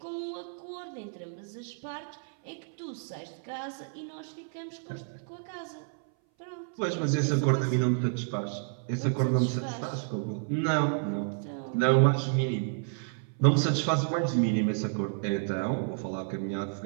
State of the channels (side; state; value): left; silent; 57 dB below the other